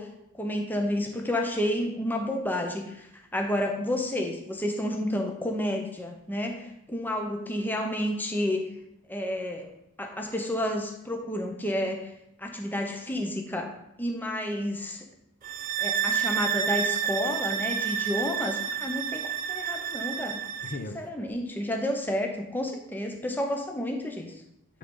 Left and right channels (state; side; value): normal; both; correlation 0.53